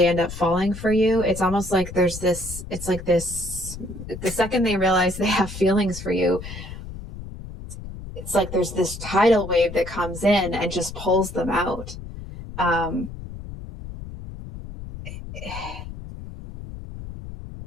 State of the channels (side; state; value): left; noise; rumble, 11 dB below the sound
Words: end up falling for you, it's almost like there's this, it's like this, the second they realize they have feelings for you, it's like there's this tidal wave that comes in and just pulls them out.